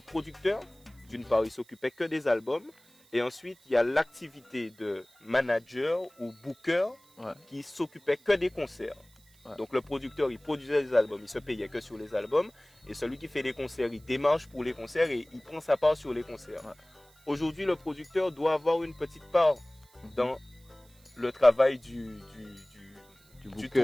D'une part, il s'occupait que des albums. Et ensuite, il y a l'activité de manager ou booker qui s'occupait que des concerts. Donc le producteur, il produisait les albums, il se payait que sur les albums. Et celui qui fait les concerts, il démarche pour les concerts et il prend sa part sur les concerts. Aujourd'hui, le producteur doit avoir une petite part dans le travail du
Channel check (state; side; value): noise; right; hiss, 29 dB below the sound